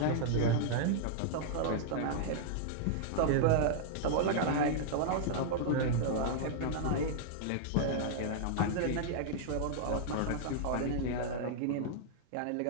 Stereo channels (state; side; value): different; both; correlation -0.01